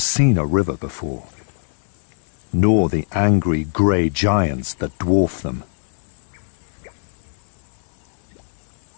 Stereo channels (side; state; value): right; silent; 56 dB below the other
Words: a river before, nor the angry grey giants that dwarf them.